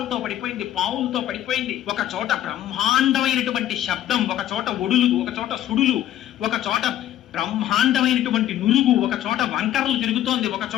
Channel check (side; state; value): right; quieter; 12.4 dB